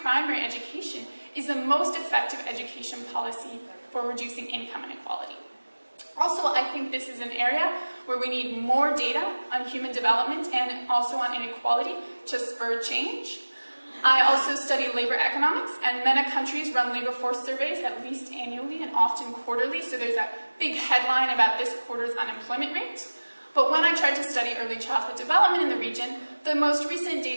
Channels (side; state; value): both; inverted; correlation -1.00